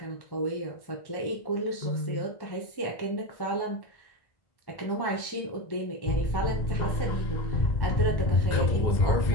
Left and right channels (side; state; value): right; late; 1.1 ms